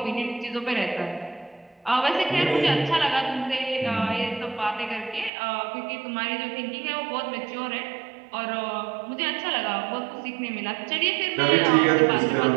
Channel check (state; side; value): drops out; left; at 5.3 s